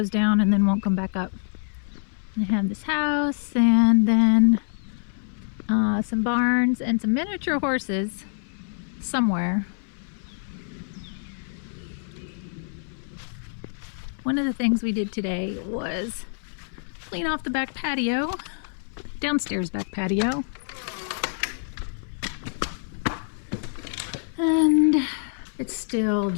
down and then won't come back up. I have this house and then some barns and some miniature horses somewhere. One of the things we did today was clean off the back patio, downstairs back patio. And it's still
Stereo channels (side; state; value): right; silent; 60 dB below the other